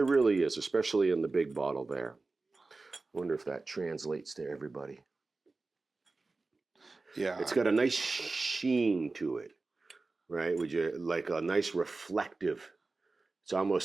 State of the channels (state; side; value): quieter; left; 3.6 dB